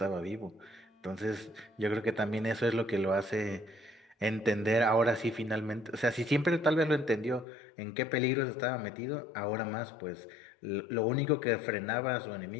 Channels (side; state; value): right; drops out; at 7.5 s